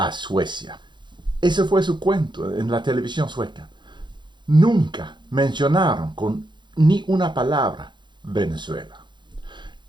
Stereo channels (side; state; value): left; late; 0.22 ms